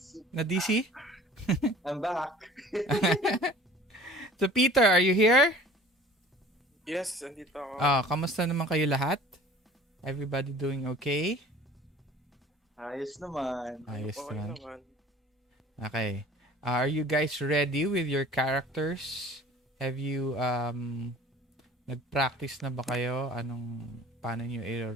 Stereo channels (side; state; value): both; normal; correlation 0.47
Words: Na-DC? I'm back. So, Peter, are you here? Yes, andito ako. Kamusta naman kayo lahat? Everybody doing okay? Ayos naman. Ayos Okay naman. naman. Okay. Are you guys ready with your characters? Have you nag-practice na ba kayo? Paano nyo